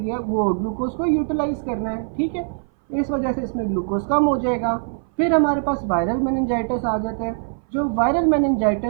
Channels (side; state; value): left; silent; 58 dB below the other